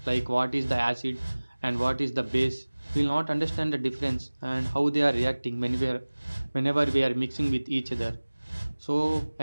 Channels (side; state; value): both; inverted; correlation -1.00